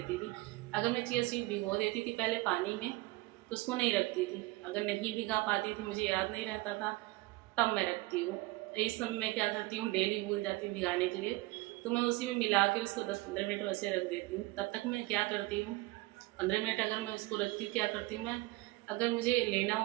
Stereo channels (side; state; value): left; quieter; 21.0 dB